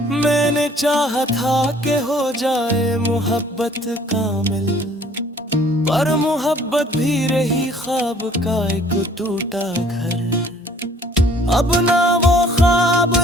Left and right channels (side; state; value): both; normal; correlation 0.56